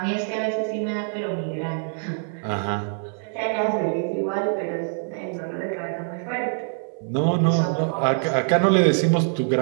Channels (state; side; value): silent; left; 58 dB below the other